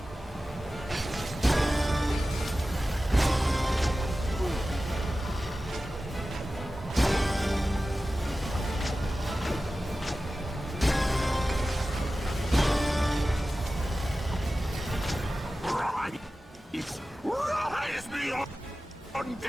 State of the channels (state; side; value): normal; both; correlation 0.95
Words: Rise me up,